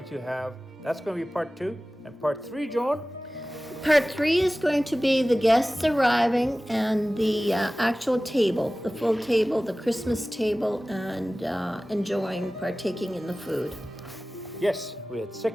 to have, that's going to be part 2, and part 3, Joan. Part 3 is going to be the guests arriving and the actual table, the full table, the Christmas table, and partaking in the food. Yes, we had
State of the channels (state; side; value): normal; both; correlation 0.97